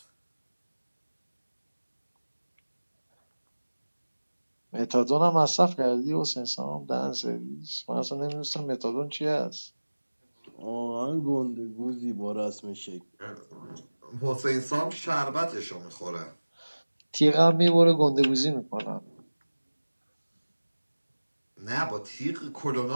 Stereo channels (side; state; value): both; inverted; correlation -1.00